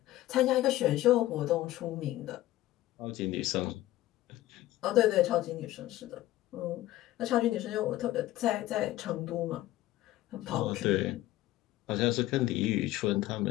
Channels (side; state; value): right; quieter; 15.6 dB